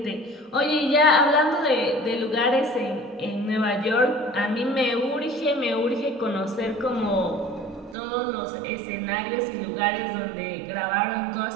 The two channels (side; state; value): left; drops out; at 8.0 s